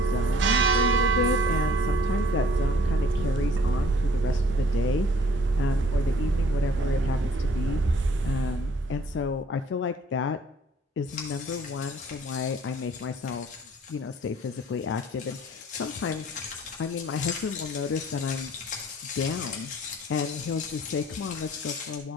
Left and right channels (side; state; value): both; normal; correlation 0.56